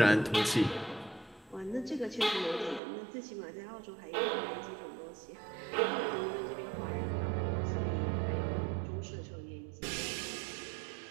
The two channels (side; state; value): left; drops out; at 2.8 s